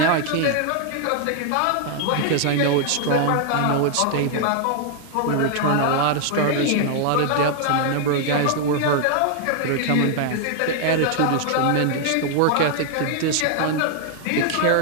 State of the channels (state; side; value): different; both; correlation 0.00